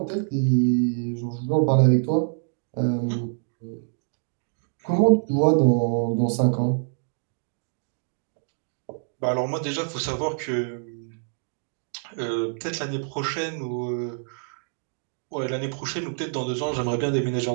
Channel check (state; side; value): silent; left; digital silence